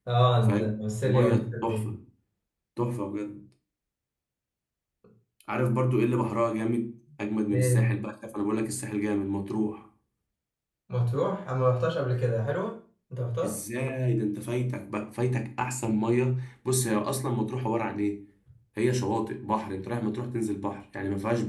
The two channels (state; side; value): identical; both; correlation 1.00